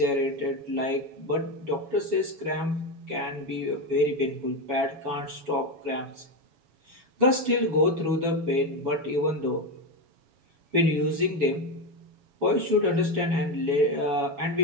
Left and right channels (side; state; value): left; late; 7.2 ms